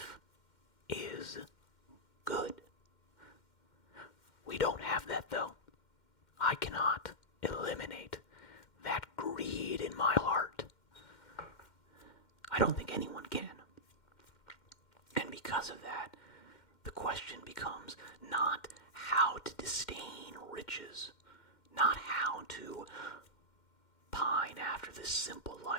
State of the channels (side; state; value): right; late; 2.1 ms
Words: is good. We don't have that though. I cannot eliminate that greed in my heart. I don't think anyone can. And because of that, the question becomes not how to disdain riches, not how to pine after this simple